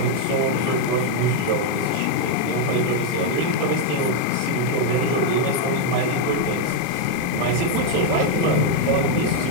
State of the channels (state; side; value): different; both; correlation 0.01